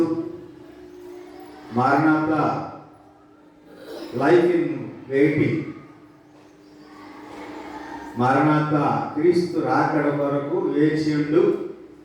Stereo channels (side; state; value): both; identical; correlation 1.00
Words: మారనాథా లైఫ్ ఇన్ వెయిటింగ్, మారనాథా క్రీస్తు రాకడ కొరకు వేచియుండు